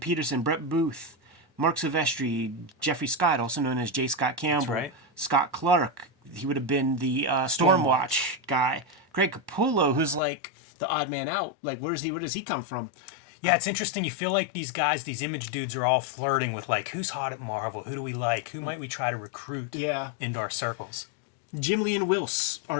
Brett Booth, Mark Silvestri, Jeffrey Scott, also known as J. Scott Campbell. That's right. Scott Clark. He would have been the Stormwatch guy. Greg Capullo, who's like the odd man out. Like, where does he come from? Yeah, it's interesting. You feel like these guys, these Image dudes, are all flirting with who's hot at Marvel? Who do we like? Who might we try to recruit into our circles? Jim Lee and Wills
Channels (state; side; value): drops out; right; at 10.2 s